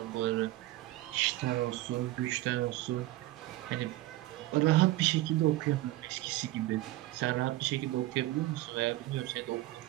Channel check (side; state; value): left; quieter; 17.0 dB